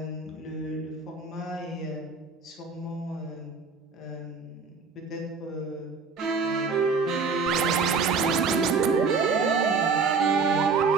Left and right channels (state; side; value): quieter; left; 4.8 dB